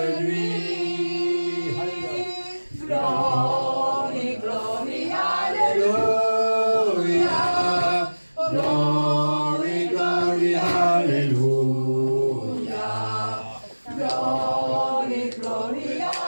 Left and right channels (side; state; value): both; inverted; correlation -1.00